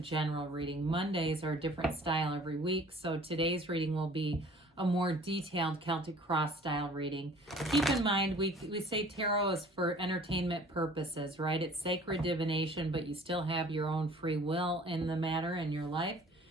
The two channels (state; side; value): normal; both; correlation 0.50